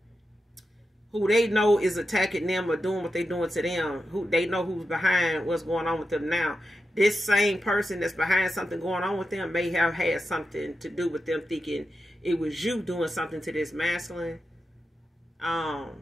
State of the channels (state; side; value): normal; both; correlation 0.89